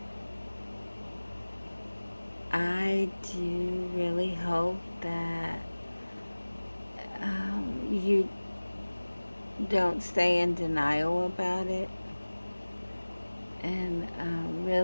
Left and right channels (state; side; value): inverted; both; correlation -1.00